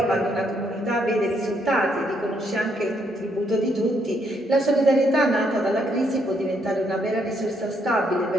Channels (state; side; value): normal; both; correlation 0.73